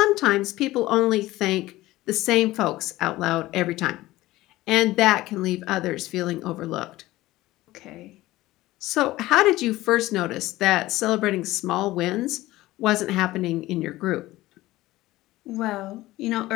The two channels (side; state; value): right; quieter; 17.4 dB